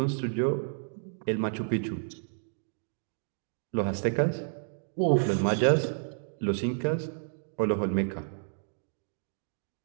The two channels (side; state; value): left; silent; digital silence